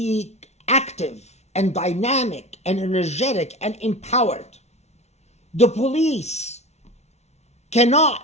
active and dynamic and energetic and empowered. The police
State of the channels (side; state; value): right; late; 0.32 ms